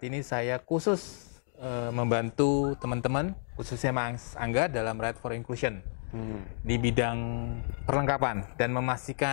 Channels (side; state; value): right; silent; digital silence